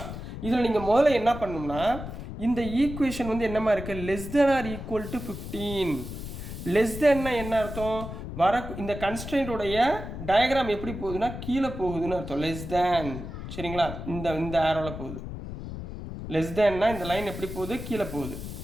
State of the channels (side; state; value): left; noise; rumble, 9 dB below the sound